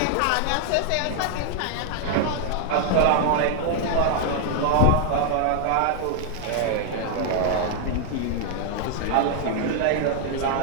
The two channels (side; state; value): both; different; correlation 0.00